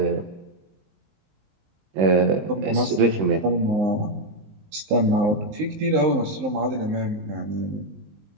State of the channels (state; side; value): late; left; 19 ms